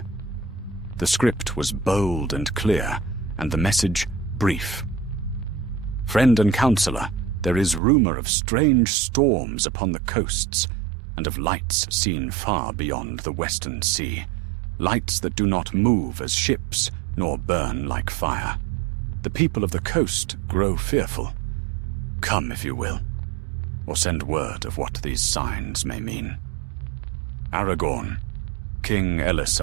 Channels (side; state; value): left; drops out; at 7.8 s